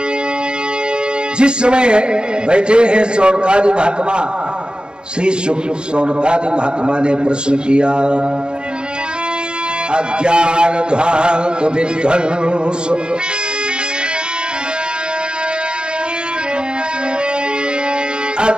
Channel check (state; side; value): late; left; 0.050 ms